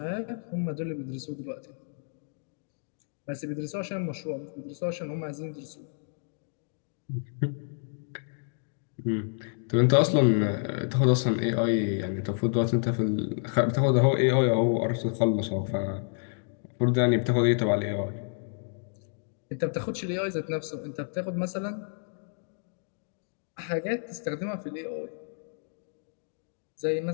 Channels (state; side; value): silent; right; digital silence